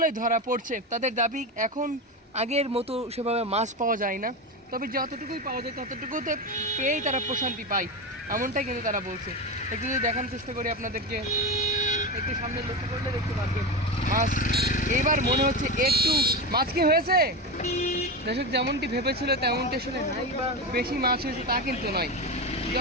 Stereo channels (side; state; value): both; normal; correlation 0.19